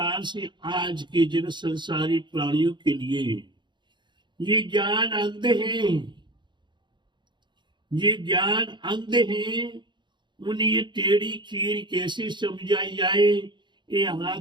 से आज के जन संसारी प्राणियों के लिए ये ज्ञान अंध है, ये ज्ञान अंध है। उन्हें ये टेढ़ी खीर कैसे समझाई जाए, ये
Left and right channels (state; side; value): late; left; 0.22 ms